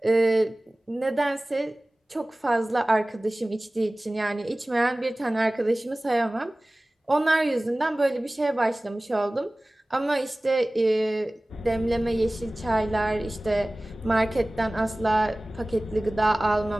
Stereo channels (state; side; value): normal; both; correlation 0.98